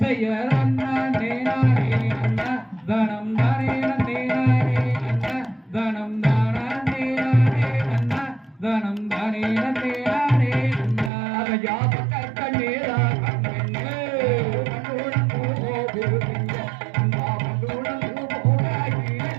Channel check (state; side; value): drops out; left; at 11.1 s